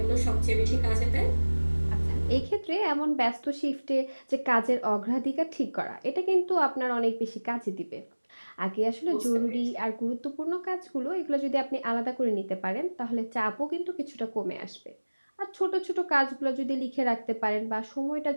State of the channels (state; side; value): inverted; both; correlation -1.00